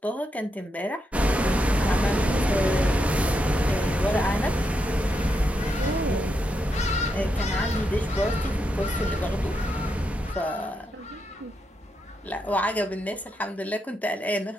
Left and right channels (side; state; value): both; normal; correlation 0.82